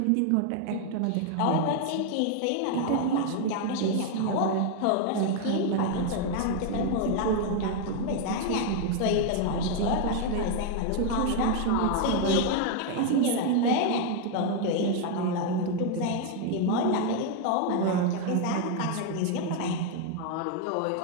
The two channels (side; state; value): both; different; correlation 0.01